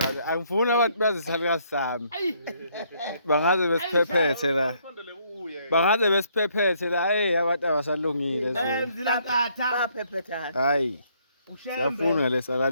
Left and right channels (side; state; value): both; inverted; correlation -0.68